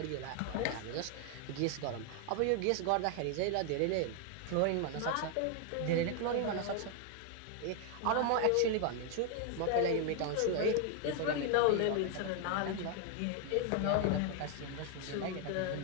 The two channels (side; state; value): both; different; correlation 0.00